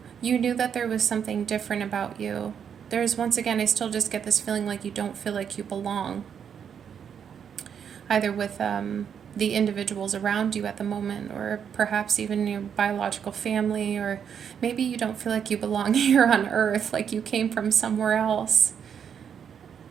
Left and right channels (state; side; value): quieter; left; 7.8 dB